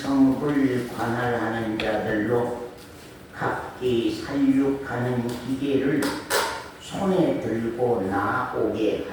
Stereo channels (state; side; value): identical; both; correlation 1.00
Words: 관할하는 자들로 각기 살육하는 기계를 손에 들고 나오게